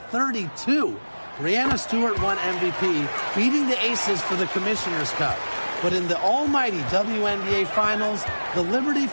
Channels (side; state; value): both; inverted; correlation -1.00